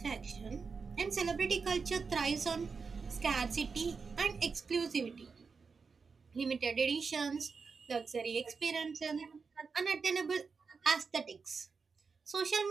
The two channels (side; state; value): left; quieter; 5.1 dB